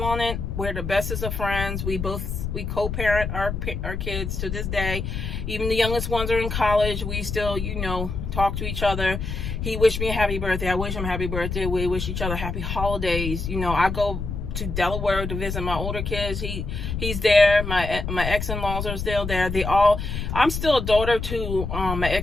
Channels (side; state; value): left; noise; rumble, 4 dB below the sound